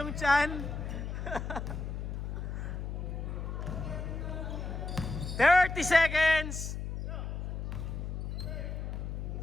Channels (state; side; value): noise; left; hum, 5 dB below the sound